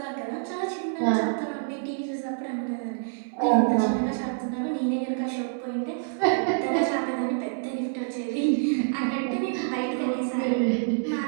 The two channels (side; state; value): left; silent; 60 dB below the other